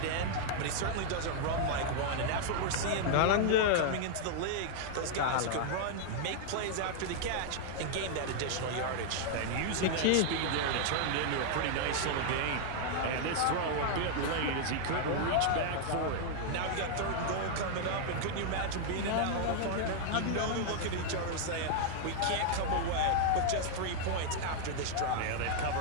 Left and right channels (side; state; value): both; different; correlation 0.00